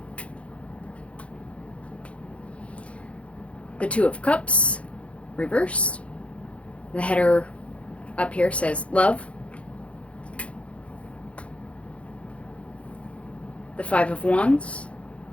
The Two of Cups, reversed. The header up here says Love. The Five of Wands.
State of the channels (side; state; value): right; late; 0.062 ms